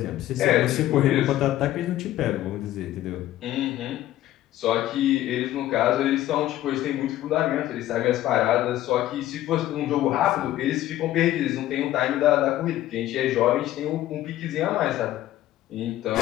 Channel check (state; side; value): quieter; right; 14.0 dB